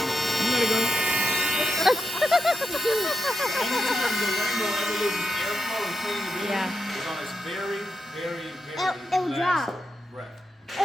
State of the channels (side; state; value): both; normal; correlation 0.88